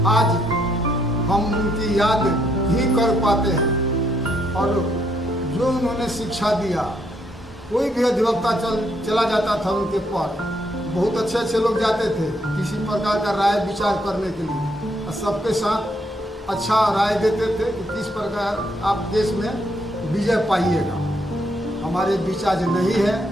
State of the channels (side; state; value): both; normal; correlation 0.74